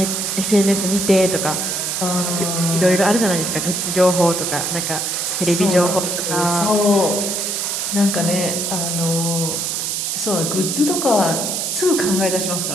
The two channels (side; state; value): right; noise; hiss, 1 dB below the sound